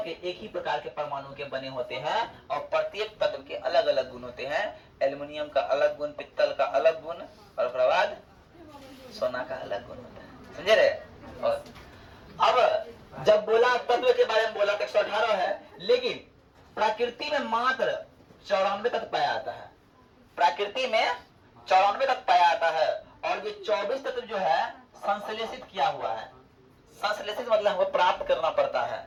के? एक ही प्रकार के परमाणु के बने होते हैं और प्रत्येक तत्व के अलग अलग गुण होते हैं। एल्युमिनियम का अलग गुण, पित्तल का अलग गुण और उसके बाद सोना का अलग गुण होता है। समझे रहे? और अब जब बोला तत्व के बारे में बोला तो 118 है, लेकिन प्रकृति में मात्र 94 तत्व पाया जाता है। प्रकृति में 94 तत्व पाया जाता है और ये 24 तत्व जो है संश्लेषित किया हुआ है। संश्लेषित मतलब हमको प्राप्त करना पड़ता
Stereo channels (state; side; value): identical; both; correlation 1.00